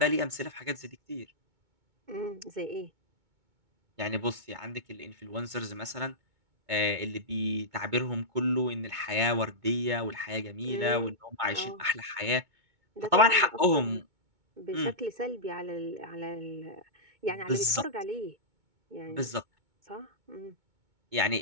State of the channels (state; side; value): late; left; 2.2 ms